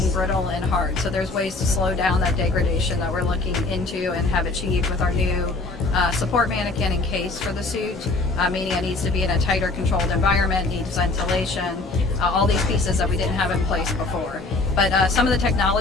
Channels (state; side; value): quieter; right; 3.4 dB